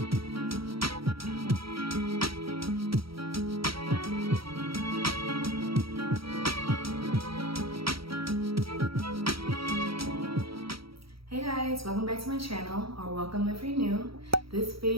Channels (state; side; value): late; left; 0.75 ms